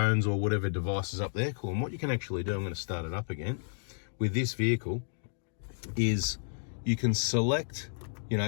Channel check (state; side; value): silent; right; digital silence